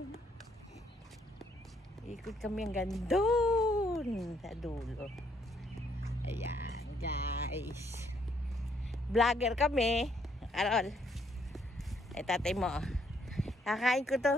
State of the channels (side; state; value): both; normal; correlation 0.70